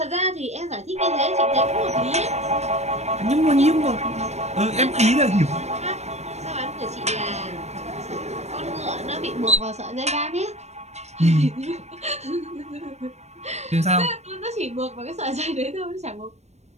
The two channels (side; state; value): left; late; 0.32 ms